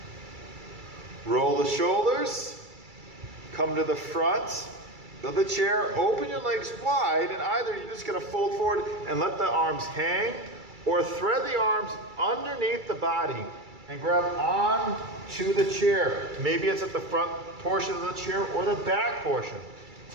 Roll the shoulders, come to the front of the chair, open your legs wide, and either you're just gonna fold forward and let the arms hang, or thread the arms underneath the body and grab on to the chair. Maybe it's at the front portion of the chair or the back portion.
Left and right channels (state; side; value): late; left; 2.3 ms